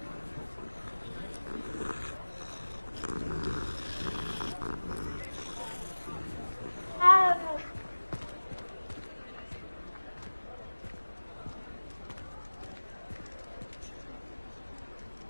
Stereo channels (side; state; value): both; inverted; correlation -1.00